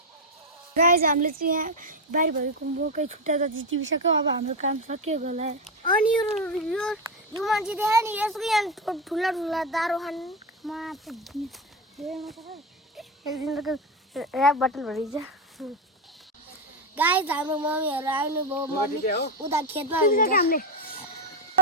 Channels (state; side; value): normal; both; correlation 0.11